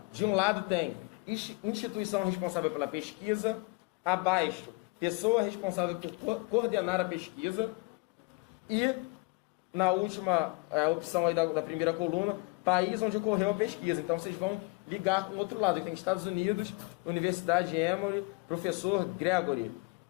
De um lado tem instituição responsável pela pesquisa. Abaixo, pessoa responsável por coordenar a pesquisa. E na última opção aí da primeira coluna, país onde ocorreu a pesquisa. Então vocês vão ligar com o outro lado. Tem Estados Unidos, Universidade Emory, professor Gregory.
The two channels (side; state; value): right; quieter; 27.5 dB